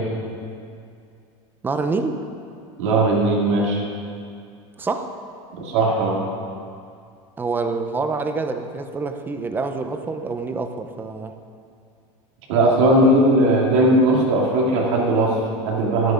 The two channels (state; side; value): normal; both; correlation 0.24